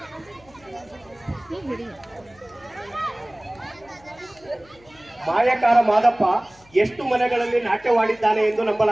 ಮಾಯಕಾರ ಮಾದಪ್ಪ ಎಷ್ಟು ಮನೆಗಳಲ್ಲಿ ನಾಟ್ಯವಾಡಿದ್ದಾನೆ ಎಂದು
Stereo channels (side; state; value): left; noise; hum, 28 dB below the sound